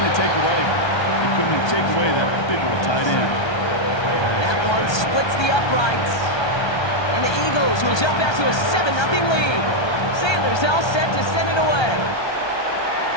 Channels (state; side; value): late; right; 1.3 ms